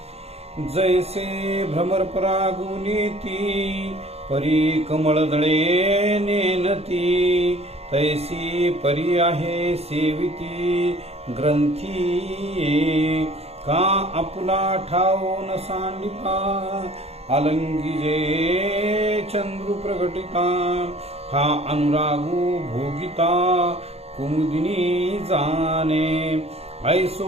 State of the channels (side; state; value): left; late; 0.30 ms